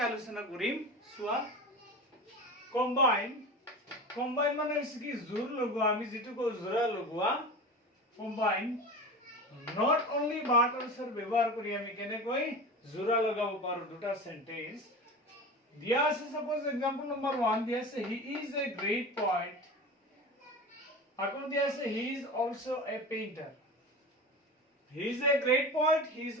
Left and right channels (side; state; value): both; normal; correlation 0.30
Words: আলোচনা কৰিম। চোৱা, কম্বাইন মানে হৈছে কি জোৰ লগোৱা, আমি যিটো কওঁ জোৰা লগোৱা। Combine not only but also ব্যৱহাৰ কৰি আমি কেনেকৈ জোৰা লগাব পাৰো দুটা সেন্টেন্স দিয়া আছে। সাপোজ एग्जांपल नंबर 1 দিয়া আছে he is a great poet, আকৌ দিয়া আছে he is also a painter। he is a great poet, he is